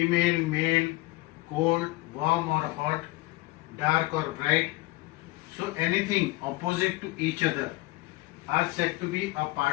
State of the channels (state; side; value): quieter; right; 21.0 dB